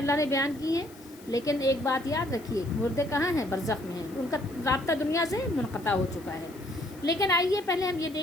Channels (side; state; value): left; noise; hiss, 23 dB below the sound